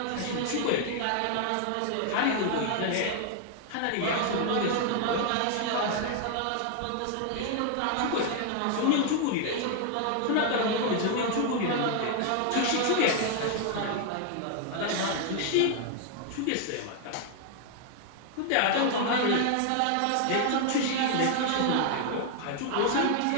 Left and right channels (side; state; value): both; different; correlation 0.00